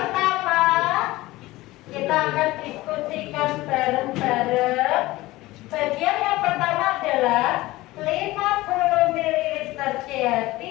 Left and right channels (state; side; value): quieter; right; 18.8 dB